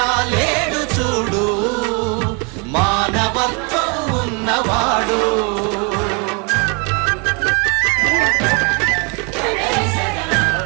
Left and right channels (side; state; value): left; quieter; 33.3 dB